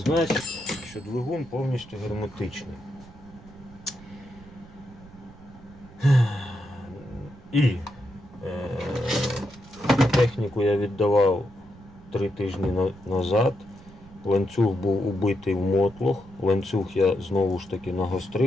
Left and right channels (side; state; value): right; noise; rumble, 21 dB below the sound